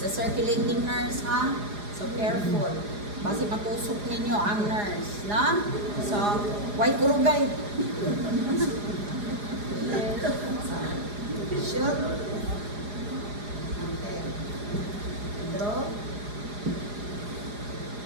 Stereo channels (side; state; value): left; late; 4.9 ms